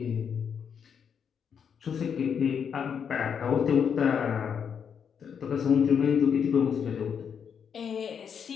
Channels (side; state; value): right; quieter; 7.3 dB